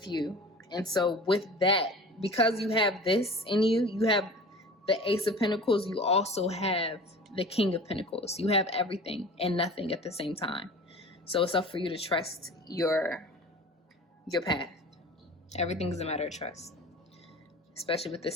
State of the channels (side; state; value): both; normal; correlation 0.39